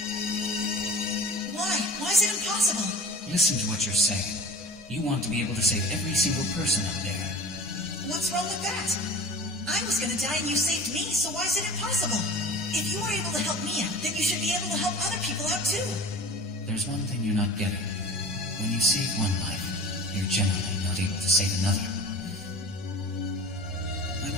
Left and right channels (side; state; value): both; normal; correlation 0.40